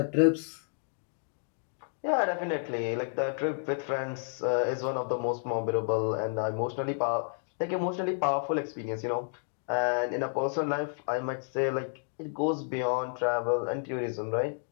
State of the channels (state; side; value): silent; right; digital silence